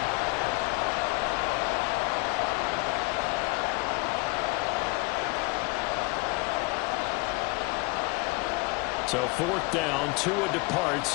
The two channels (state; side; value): quieter; right; 25.2 dB